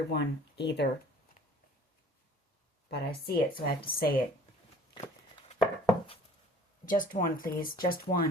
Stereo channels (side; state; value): both; normal; correlation 0.51